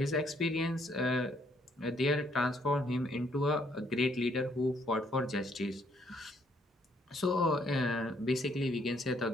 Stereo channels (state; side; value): normal; both; correlation 0.69